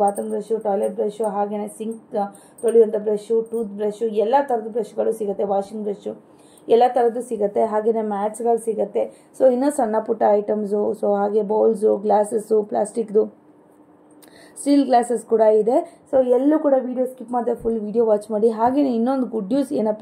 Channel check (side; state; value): both; identical; correlation 1.00